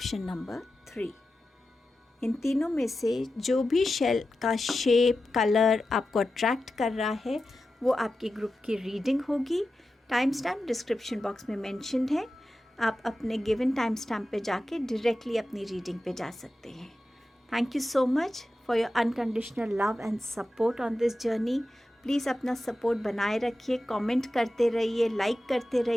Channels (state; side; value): normal; both; correlation 0.92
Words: number 3। इन तीनों में से जो भी शेल का शेप, कलर आपको अट्रैक्ट कर रहा है वो आपके ग्रुप की रीडिंग होगी। टाइम स्टैम्प डिस्क्रिप्शन बॉक्स में मेंशन्ड है। आप अपने गिवन टाइम स्टैम्प पे जाके डायरेक्टली अपनी रीडिंग पे जा सकते हैं। Thank you so much for your unconditional love and support on this journey. Please अपना सपोर्ट बनाए रखिए, कमेंट करते रहिए, लाइक करते